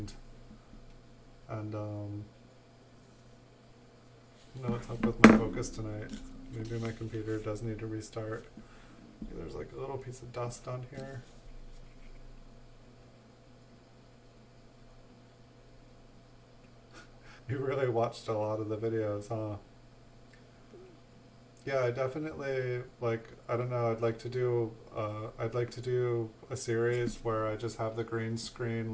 And, I don't know what's up with my focus tonight. Maybe my computer does need to restart. There's like a little piece of dust on here. You really watched a lot of the videos, huh? Yeah, I definitely like, I don't know, I'd like to do a series where I just have the green screen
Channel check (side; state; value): both; identical; correlation 1.00